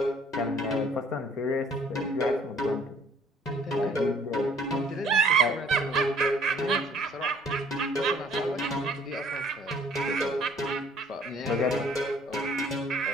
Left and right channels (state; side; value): normal; both; correlation 0.57